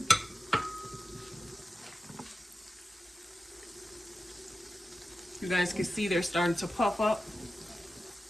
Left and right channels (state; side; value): normal; both; correlation 0.92